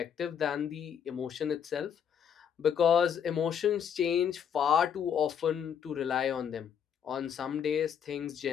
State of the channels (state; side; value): quieter; right; 8.2 dB